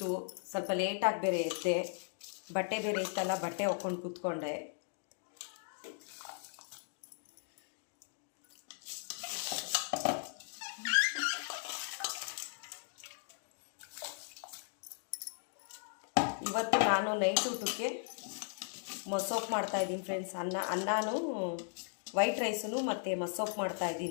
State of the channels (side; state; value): right; silent; digital silence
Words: ಸ್ವಲ್ಪ ಲೇಟಾಗಿ ಬೇರೆ ಎದ್ದೆ. ಬಟ್ಟೆ ಬೇರೆ ಇತ್ತಲ್ಲ, ಬಟ್ಟೆ ಹೊಕ್ಕೊಂಡು ಕೂತ್ಕೊಂಡೆ. ಇವತ್ತು ನಾನು ನೈಟ್ ಊಟಕ್ಕೆ ಮಸೊಪ್ಪು ಮಾಡ್ತಾಯಿದ್ದೀನಿ ಫ್ರೆಂಡ್ಸ್. ಅನ್ನನೂ ವೈಟ್ ರೈಸನ್ನು ಮತ್ತು ಮಸೊಪ್ಪು